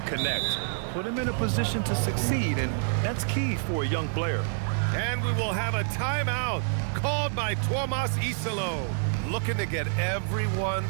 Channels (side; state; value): left; silent; digital silence